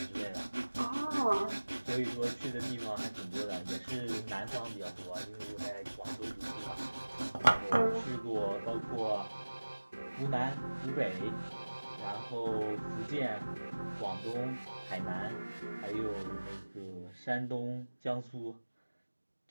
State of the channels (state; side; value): inverted; both; correlation -1.00